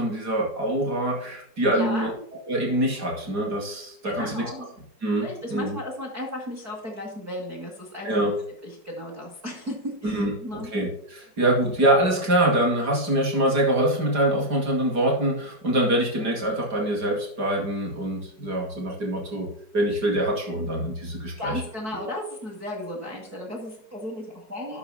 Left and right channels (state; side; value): late; left; 4.9 ms